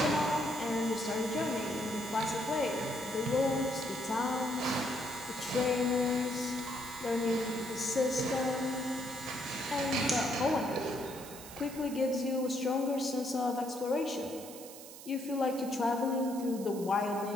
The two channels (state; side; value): noise; right; hiss, 15 dB below the sound